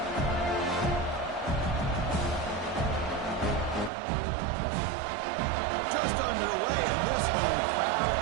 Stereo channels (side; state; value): left; drops out; at 3.9 s